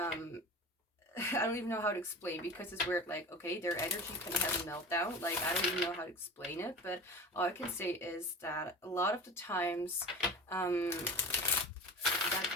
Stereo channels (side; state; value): both; normal; correlation 0.34